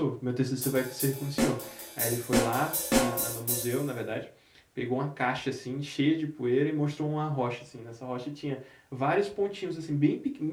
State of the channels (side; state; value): both; identical; correlation 1.00